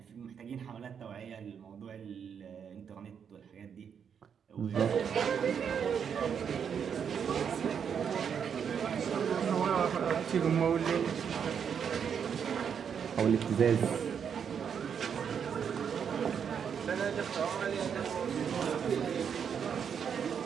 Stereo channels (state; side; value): quieter; left; 7.4 dB